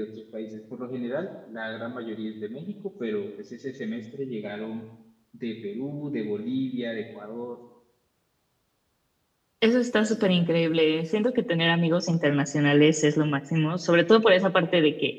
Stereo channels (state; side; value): identical; both; correlation 1.00